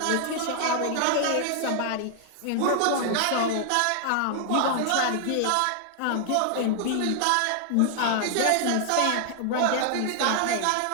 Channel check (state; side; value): different; both; correlation 0.00